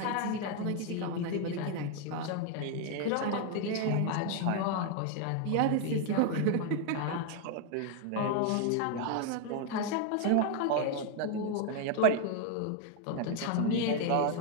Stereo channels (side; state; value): both; different; correlation 0.00